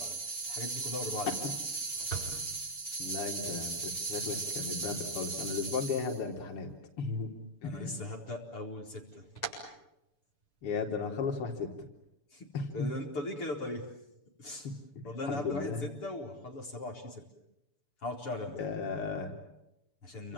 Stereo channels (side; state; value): right; late; 6.9 ms